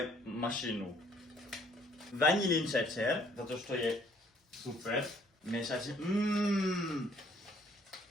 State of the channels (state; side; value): normal; both; correlation 0.62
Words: mašinu. Vanilin šećer, zato što je super. Mešać.